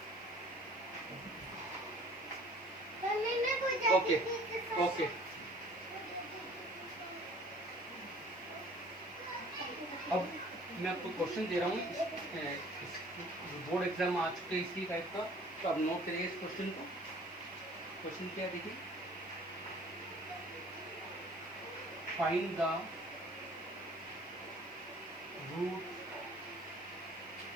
okay, okay. अब मैं आपको क्वेश्चन दे रहा हूँ, बोर्ड एग्जाम आ चुके हैं इसी टाइप का, तो आप नोट करिए इस क्वेश्चन को। क्वेश्चन क्या है देखिए, find the root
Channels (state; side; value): noise; right; hiss, 27 dB below the sound